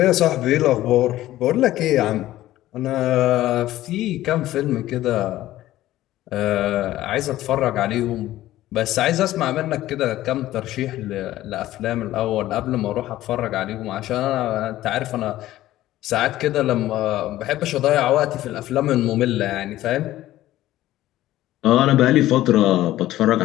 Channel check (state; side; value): quieter; right; 14.9 dB